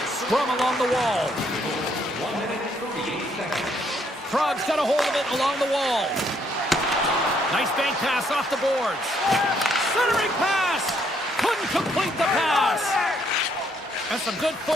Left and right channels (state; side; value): normal; both; correlation 0.70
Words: Scrum along the wall. Prague's got a hold of it along the wall. Nice bank pass off the boards. Centering pass. Couldn't complete the pass. And some good